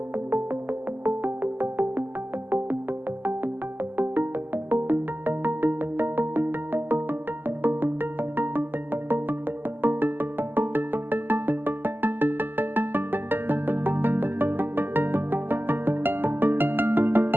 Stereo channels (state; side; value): late; left; 0.094 ms